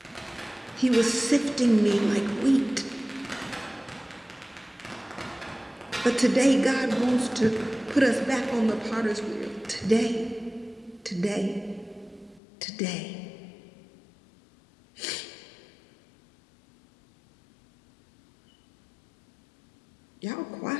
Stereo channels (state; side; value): drops out; right; at 12.4 s